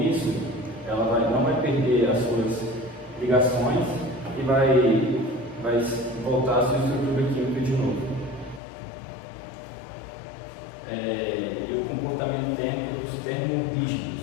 isso, ela não vai perder as suas ligações e vai voltar à sua estrutura química de novo. E o comportamento térmico dos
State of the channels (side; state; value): right; drops out; at 8.6 s